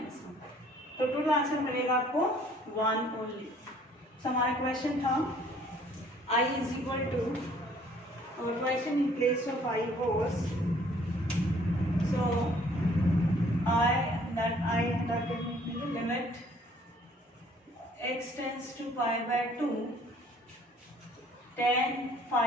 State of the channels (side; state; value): both; normal; correlation 0.58